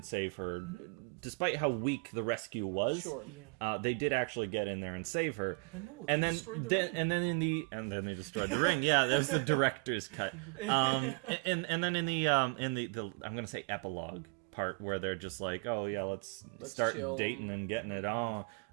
save her, despite how weak the rescue was. Sure. Yeah. They did actually get in there and save her. But no, they and then destroyed the ring. And then they destroyed the ring. Yeah, that was the director's cut. And then in the I'm gonna say epilogue part where they're just like, oh yeah, let's start chill. dating and getting it on.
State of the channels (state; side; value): quieter; left; 34.9 dB